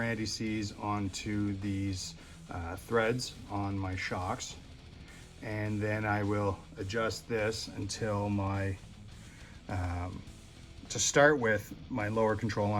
anti-seize onto these threads on my shocks, and then I will adjust this until my to start with, my lower control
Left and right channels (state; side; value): identical; both; correlation 1.00